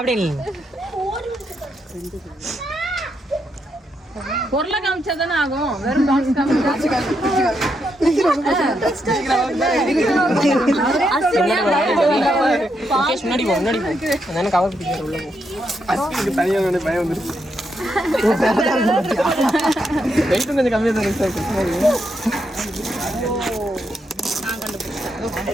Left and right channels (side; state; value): both; normal; correlation 0.80